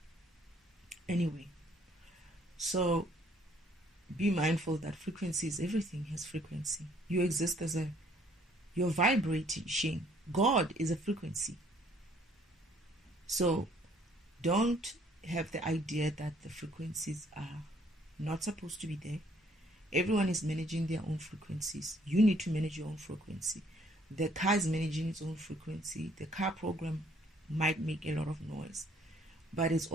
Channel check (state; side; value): normal; both; correlation 0.63